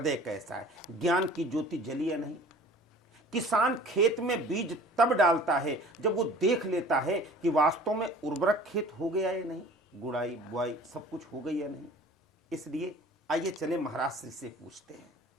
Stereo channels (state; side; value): normal; both; correlation 0.46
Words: कैसा है, ज्ञान की ज्योति जली है नहीं। किसान खेत में बीज तब डालता है जब वो देख लेता है कि वास्तव में उर्वरक खेत हो गया है नहीं, गुड़ाई बुआई सब कुछ हो गई है नहीं। इसलिए आइए चले महाराज श्री से पूछते हैं।